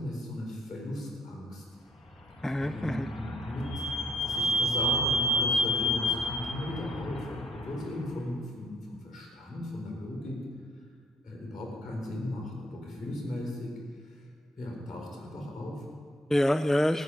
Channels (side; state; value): both; normal; correlation 0.67